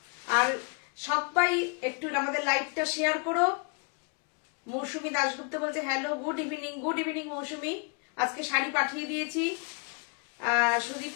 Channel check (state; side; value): quieter; right; 34.7 dB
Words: আর সবাই একটু আমাদের লাইভটা শেয়ার করো। মৌসুমী দাশগুপ্ত বলছে hello, good evening. Good evening Mousumi, আজকে শাড়ি পাঠিয়ে দিয়েছি।